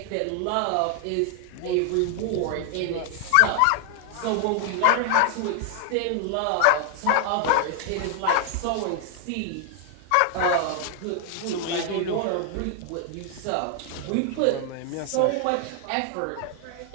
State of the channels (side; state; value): both; different; correlation 0.00